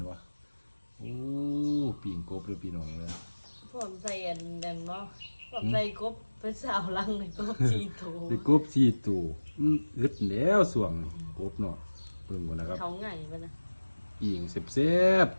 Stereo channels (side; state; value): both; inverted; correlation -1.00